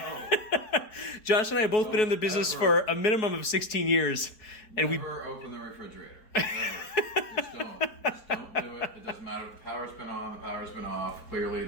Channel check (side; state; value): right; late; 4.7 ms